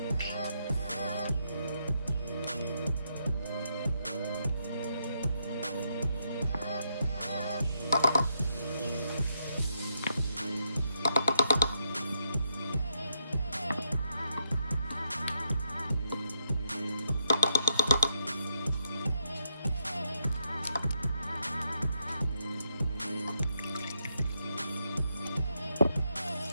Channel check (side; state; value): both; inverted; correlation -0.79